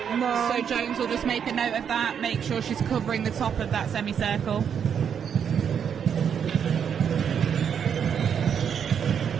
No. So Jones will just make a note of that, make sure she's covering the top of that semicircle.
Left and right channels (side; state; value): left; quieter; 7.8 dB